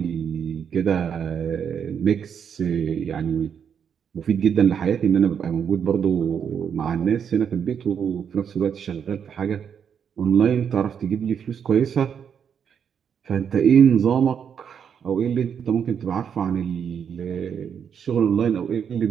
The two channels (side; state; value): left; quieter; 7.6 dB